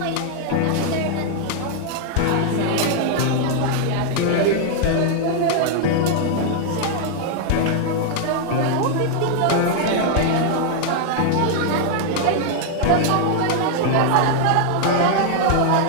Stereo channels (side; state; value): both; different; correlation 0.00